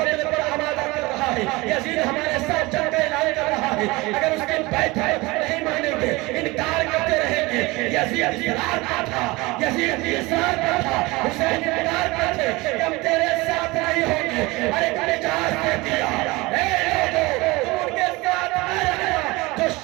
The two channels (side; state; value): left; quieter; 22.7 dB